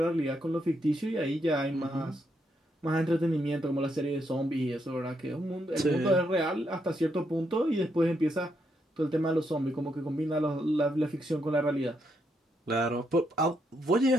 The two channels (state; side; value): normal; both; correlation 0.78